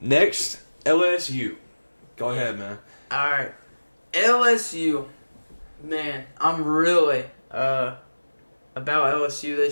Next, LSU. Go ahead, man. All right, LSU. Man, I'm really about LSU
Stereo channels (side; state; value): both; inverted; correlation -1.00